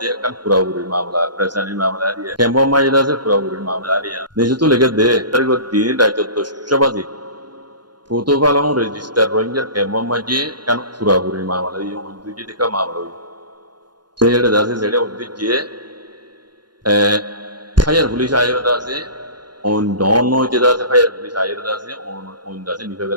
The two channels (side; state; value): left; late; 0.71 ms